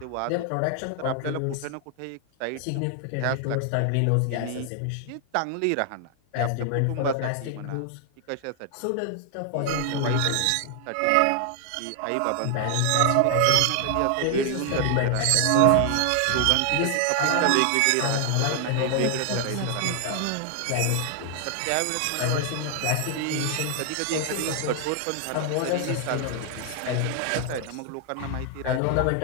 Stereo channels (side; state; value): both; different; correlation 0.00